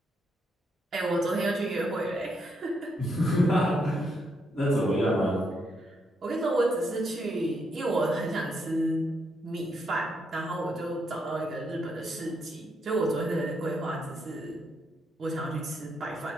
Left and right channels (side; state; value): both; normal; correlation 0.78